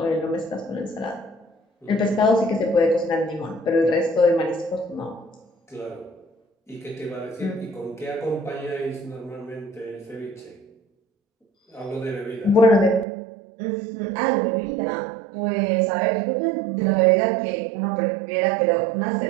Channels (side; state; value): left; drops out; at 13.1 s